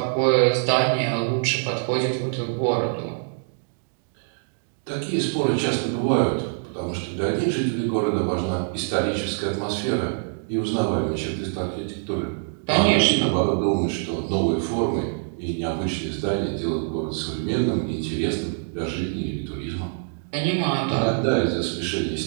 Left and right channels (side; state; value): left; silent; digital silence